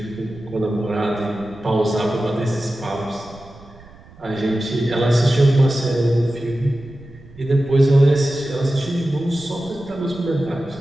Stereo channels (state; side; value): noise; right; rumble, 22 dB below the sound